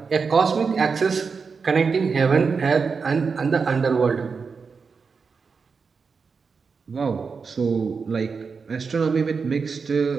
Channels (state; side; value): quieter; left; 5.2 dB